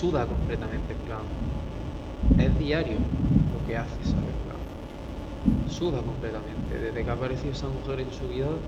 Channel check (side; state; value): both; identical; correlation 1.00